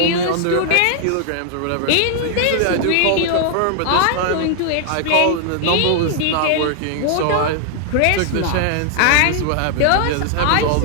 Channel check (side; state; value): both; different; correlation 0.00